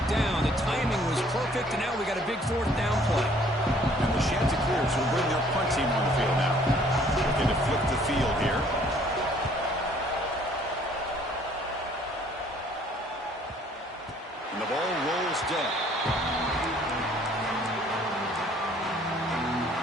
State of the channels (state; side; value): normal; both; correlation 0.59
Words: down. The timing was perfect, and now we got a big 4th down play. And the Chanticleers will bring their punt team on the field now. Looking to flip the field here. And the ball rolls dead.